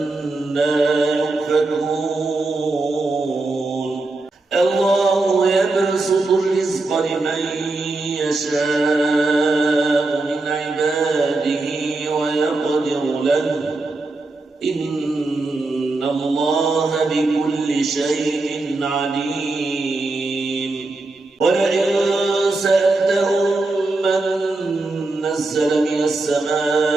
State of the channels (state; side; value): quieter; left; 3.2 dB